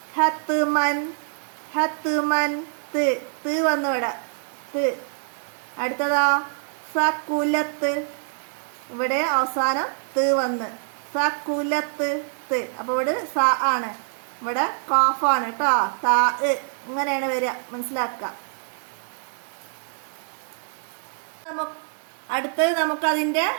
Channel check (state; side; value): silent; left; digital silence